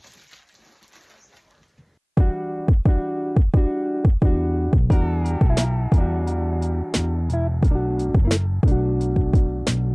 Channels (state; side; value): identical; both; correlation 1.00